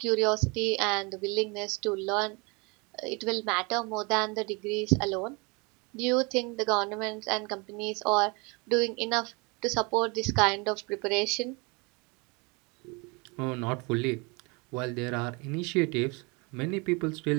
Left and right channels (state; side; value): quieter; left; 29.3 dB